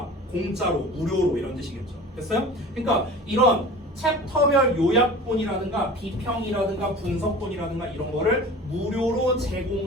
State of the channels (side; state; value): both; normal; correlation 0.39